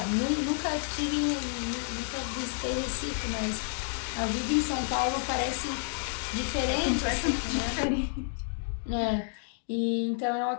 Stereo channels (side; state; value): right; silent; digital silence